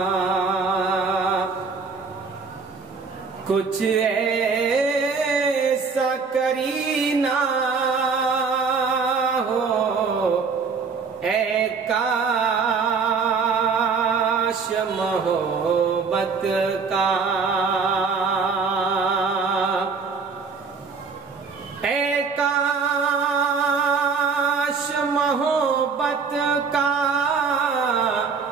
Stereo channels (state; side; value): quieter; left; 5.1 dB